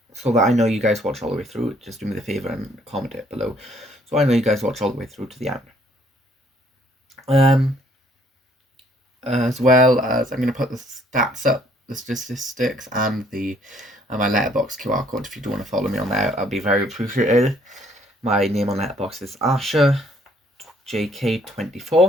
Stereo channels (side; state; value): both; normal; correlation 0.63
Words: so that I know you guys watch all the way through, just do me the favor and comment it below, so I know you guys watch all the way through to the end. As well as I'm going to put the stats up, the statistics, and the my Letterboxd QR code. If you do want to follow me on there, I'll be very appreciated. My name on Letterboxd is Asha